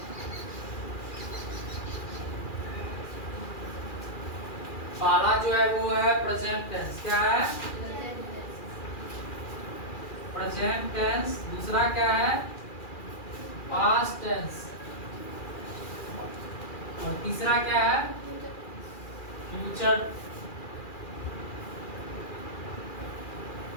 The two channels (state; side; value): late; right; 2.4 ms